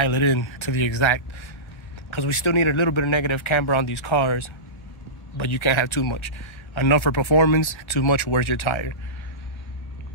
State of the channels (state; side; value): late; right; 1.3 ms